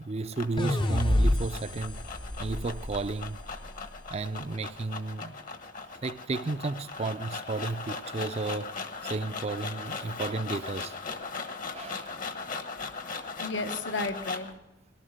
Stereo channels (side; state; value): both; normal; correlation 0.57